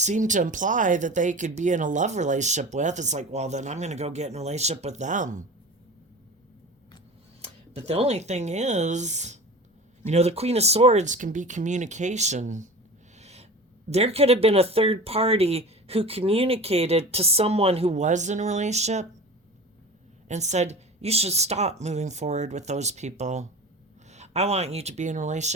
to imply that they could be in a love relationship with, it's like, well, then I'm going to go get in a relationship with them. But the only thing is, the Queen of Swords can be communication. There could have been a third party who communicated to someone who was in a relationship and said, you should stop moving forward with those people. I want you to be in a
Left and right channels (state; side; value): normal; both; correlation 0.35